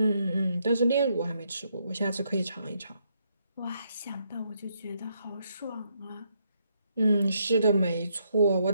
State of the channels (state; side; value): inverted; both; correlation -0.76